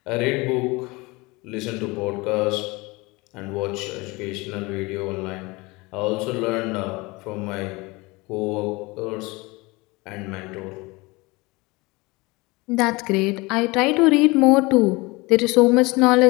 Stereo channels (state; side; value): quieter; right; 24.1 dB